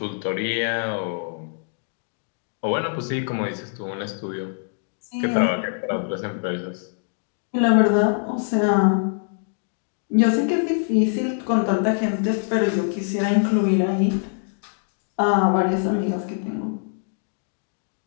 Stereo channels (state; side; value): silent; right; digital silence